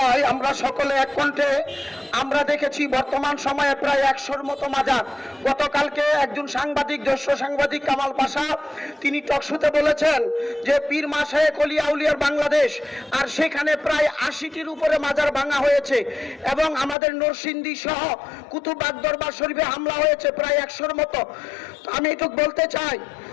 আমরা সকলে এক কণ্ঠে আমরা দেখেছি বর্তমান সময়ে প্রায় 100-র মতো মাজার। গতকালকে একজন সাংবাদিক, জ্যেষ্ঠ সাংবাদিক কামাল পাশা, তিনি টকশোতে বলেছেন যে পীর মাশায়েখ ওলিয়া আউলিয়ার বাংলাদেশ, আর সেখানে প্রায় 80টির উপরে মাজার ভাঙা হয়েছে এবং আমাদের নরসিংদী সহ কুতুববাগ দরবার শরীফে হামলা হয়েছে প্রায় 100-র মতো। তো আমি এটুকু বলতে চাই,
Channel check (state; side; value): drops out; right; at 16.9 s